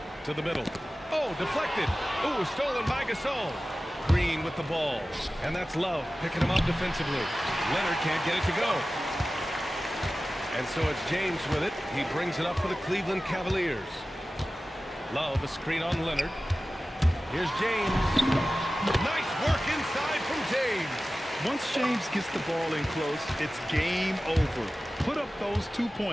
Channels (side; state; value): both; normal; correlation 0.96